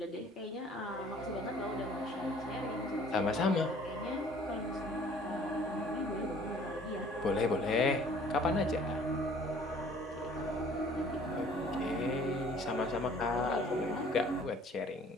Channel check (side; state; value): both; normal; correlation 0.53